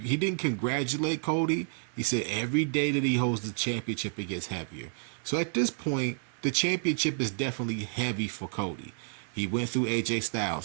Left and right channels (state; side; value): silent; left; digital silence